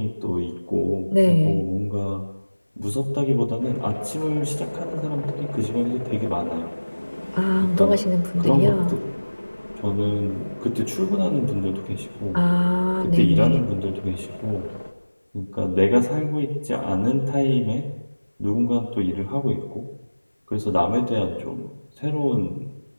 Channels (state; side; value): inverted; both; correlation -1.00